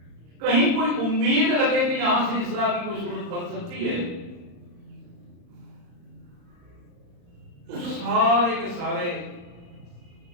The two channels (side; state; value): left; late; 35 ms